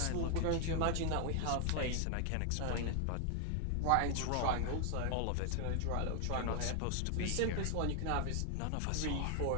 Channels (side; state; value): both; different; correlation 0.00